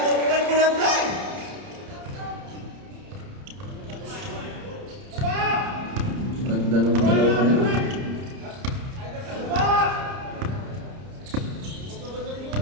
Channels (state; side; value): late; left; 30 ms